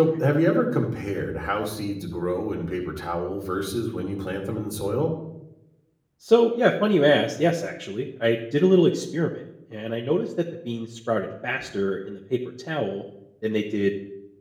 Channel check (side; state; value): both; identical; correlation 1.00